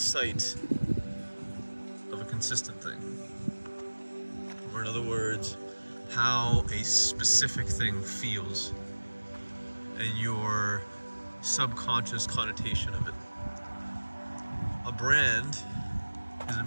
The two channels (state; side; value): inverted; both; correlation -1.00